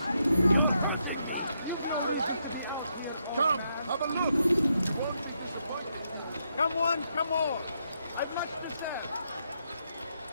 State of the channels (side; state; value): both; inverted; correlation -0.80